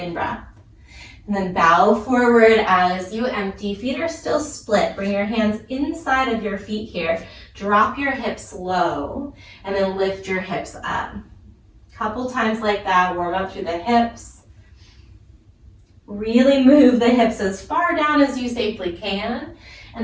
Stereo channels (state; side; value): identical; both; correlation 1.00